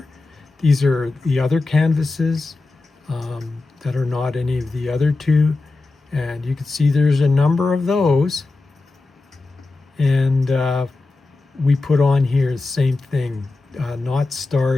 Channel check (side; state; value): right; quieter; 3.4 dB